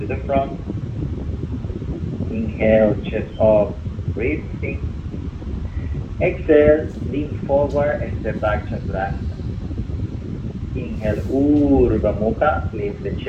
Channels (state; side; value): identical; both; correlation 1.00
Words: the front. Inhale, chest up, breathing. Exhale, lean forward, step back, chaturanga. Inhale, Urdhva Mukha, lift the